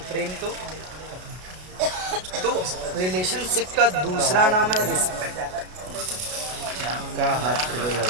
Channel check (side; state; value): left; late; 33 ms